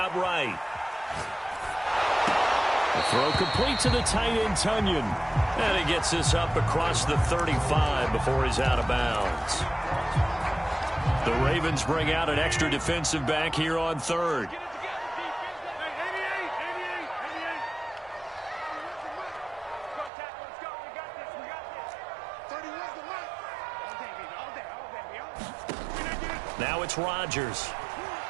right. The throw complete to the tight end, Tunyon. And he gets this up across the 35 before he's out of bounds. The Ravens bring out an extra defensive back here on 3rd. Now it's Rodgers.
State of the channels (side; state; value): left; drops out; at 20.1 s